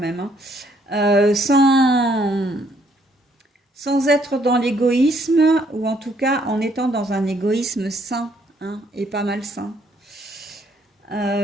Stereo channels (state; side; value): normal; both; correlation 0.68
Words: hein. Sans être dans l'égoïsme, ou en tout cas en étant dans un égoïsme sain, hein, et pas malsain.